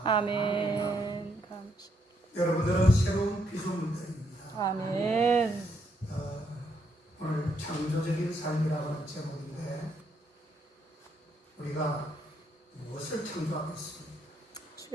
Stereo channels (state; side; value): normal; both; correlation 0.75